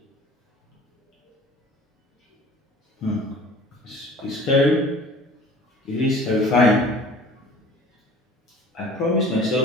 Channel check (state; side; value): normal; both; correlation 0.46